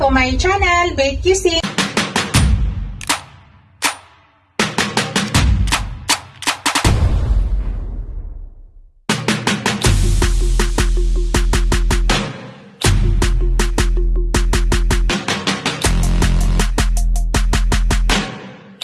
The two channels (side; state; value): both; identical; correlation 1.00